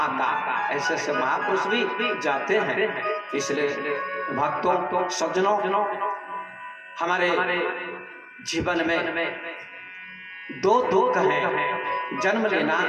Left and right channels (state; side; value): identical; both; correlation 1.00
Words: का। ऐसे ऐसे महापुरुष भी जाते हैं। इसलिए भक्तों, सज्जनों, हमारे जीवन में 2 दुख हैं, जन्म लेना